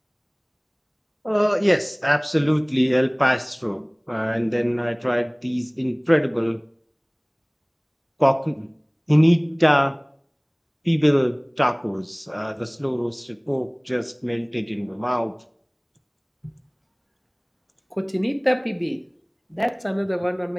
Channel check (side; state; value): both; identical; correlation 1.00